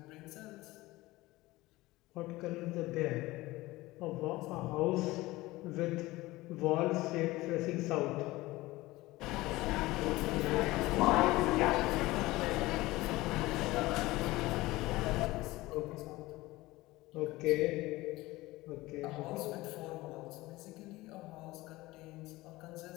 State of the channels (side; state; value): right; quieter; 19.3 dB